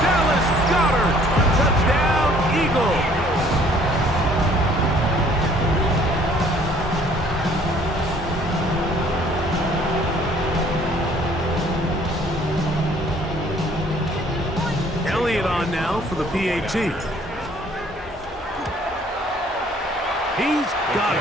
Dallas Goedert. Touchdown, Eagles. Elliott on now for the PAT. He's got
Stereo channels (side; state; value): both; normal; correlation 0.58